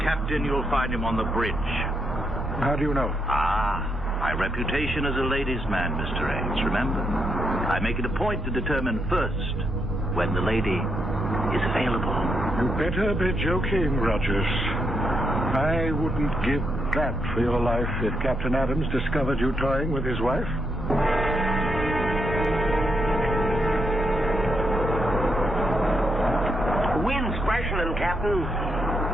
captain, you'll find him on the bridge. How do you know? My reputation as a ladies' man, Mr. Ames, remember? I make it a point to determine first when the lady is available. You better be joking, Rogers. I wouldn't give that for your life if Captain Adams discovered you toying with his wife. happening, Captain?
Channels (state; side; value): normal; both; correlation 0.79